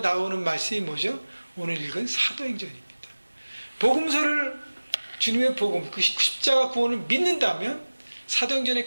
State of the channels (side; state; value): both; inverted; correlation -1.00